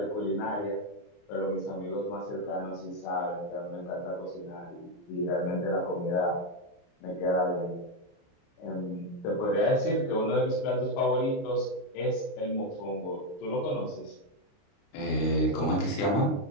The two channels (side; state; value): right; late; 29 ms